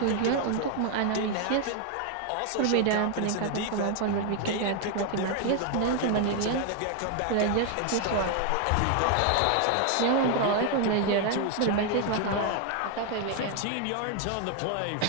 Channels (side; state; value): both; different; correlation 0.00